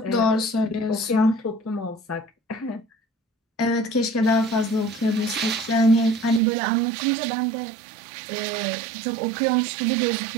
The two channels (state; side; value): drops out; left; at 6.4 s